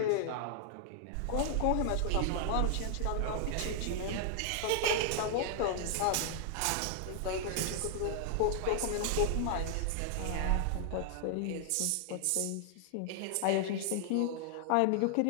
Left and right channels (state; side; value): different; both; correlation 0.00